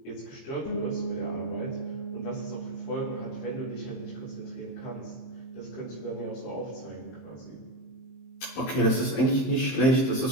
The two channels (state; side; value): late; right; 23 ms